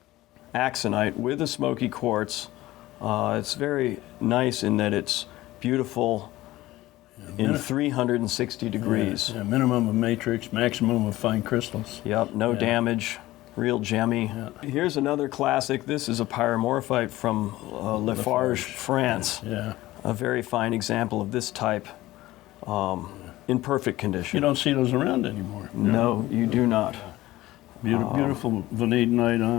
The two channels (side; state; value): right; quieter; 17.1 dB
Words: axonite with a smoky quartz. It's very nice in that it's beautiful in 360 degrees. Yeah, minimum of matrix, maximum of fine crystals. Yep, no damage, real gemmy. Here's another classic. This is a pyromorphite from Lafarge, France. Yeah. A very fine example of this type in perfect condition. You don't see those around anymore. No, you do not. Beautiful vanadinite